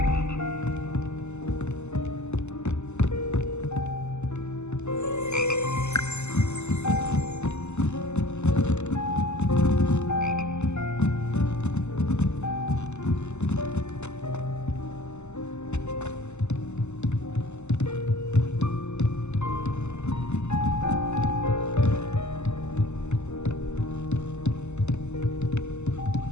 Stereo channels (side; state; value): right; late; 0.83 ms